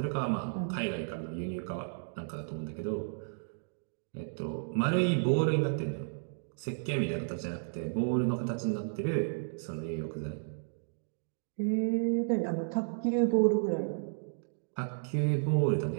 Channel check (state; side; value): silent; left; digital silence